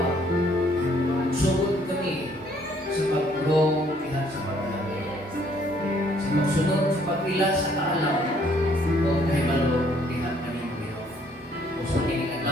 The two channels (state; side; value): normal; both; correlation 0.64